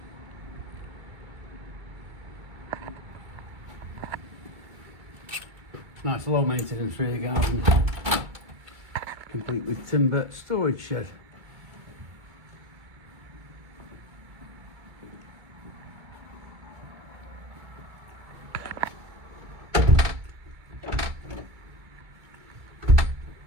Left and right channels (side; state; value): left; late; 2.3 ms